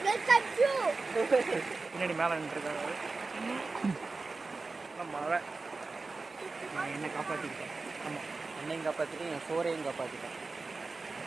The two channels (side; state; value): left; quieter; 3.8 dB